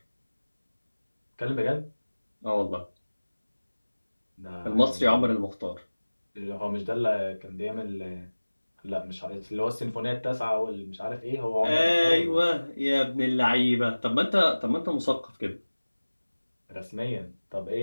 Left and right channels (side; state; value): both; inverted; correlation -1.00